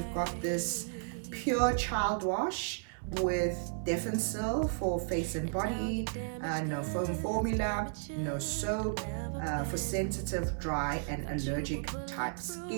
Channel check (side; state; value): left; silent; 55 dB below the other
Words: got this pure child wash with Defensil for face and body, no foam formula, no soap, for sensitive, dry and allergic type